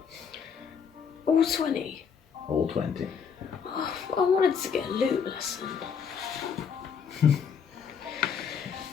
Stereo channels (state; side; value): quieter; right; 6.8 dB